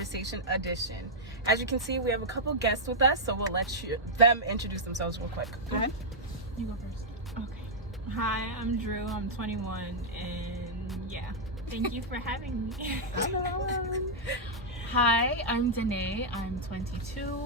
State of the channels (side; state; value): both; normal; correlation -0.07